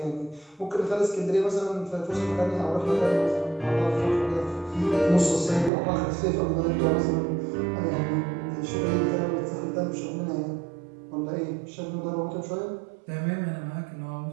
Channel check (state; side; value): drops out; left; at 5.7 s